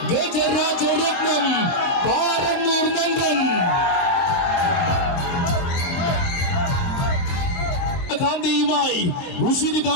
ഗജരാജരത്നം പാറന്നൂർ നന്ദൻ. കാന്തിയുമായി ഉശിരി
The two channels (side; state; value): right; late; 22 ms